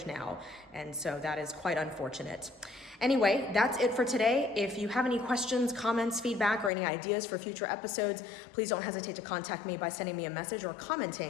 now, and so that is quite unfortunate. Anyway, that's it for today. If you have any questions, comments, feedback, or any ideas for future episodes, please don't hesitate to contact me by sending me a message or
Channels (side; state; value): right; drops out; at 6.7 s